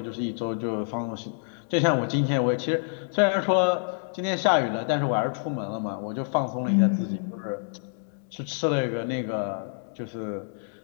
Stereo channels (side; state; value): right; silent; digital silence